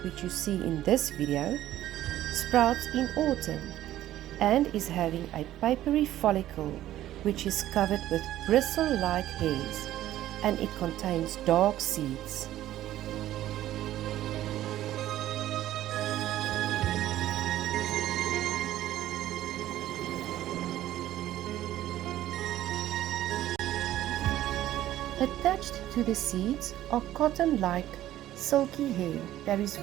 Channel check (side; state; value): left; quieter; 13.6 dB